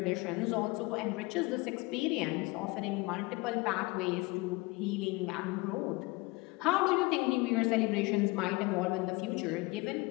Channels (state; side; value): quieter; right; 24.3 dB